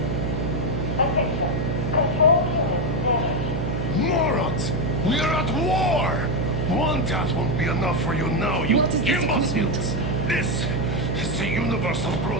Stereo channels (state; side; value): noise; right; hum, 2 dB below the sound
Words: Morons! We're at war! One death won't be enough for you now, you imbeciles! This is the universal